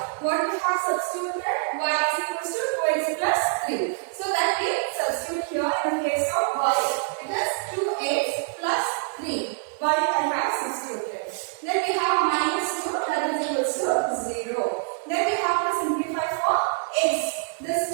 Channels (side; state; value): left; silent; digital silence